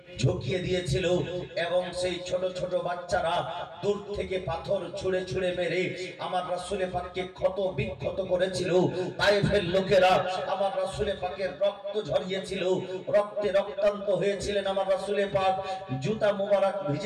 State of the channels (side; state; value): both; identical; correlation 1.00